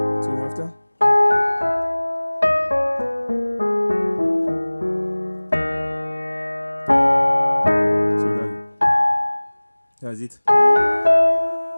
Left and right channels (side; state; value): both; inverted; correlation -1.00